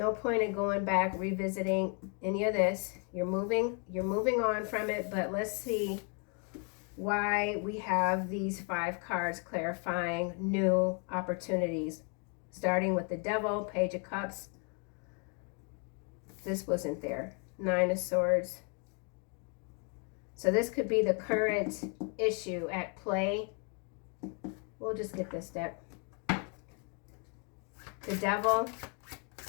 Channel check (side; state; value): right; quieter; 38.5 dB